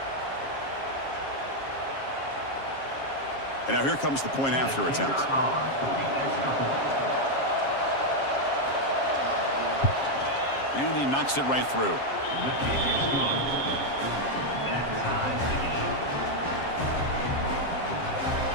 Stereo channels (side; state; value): right; late; 7.4 ms